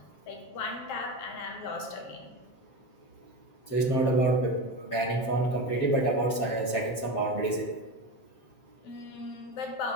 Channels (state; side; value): late; right; 7.5 ms